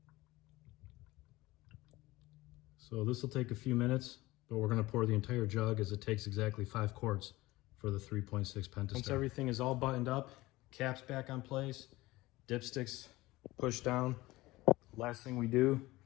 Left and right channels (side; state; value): right; quieter; 19.2 dB